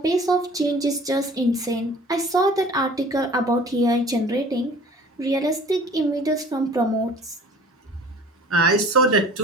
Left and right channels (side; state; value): both; normal; correlation 0.48